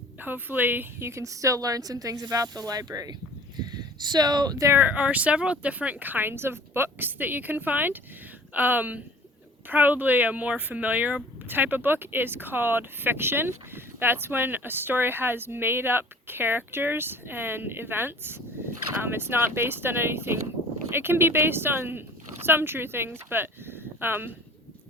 hopefully you can still learn some things about the library. So there are several different kinds of books that you can find. Probably a more familiar type of book is called fiction. That's when a story has made up characters and events. It's not based on anything. It can be based on some true things, but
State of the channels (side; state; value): both; normal; correlation 0.47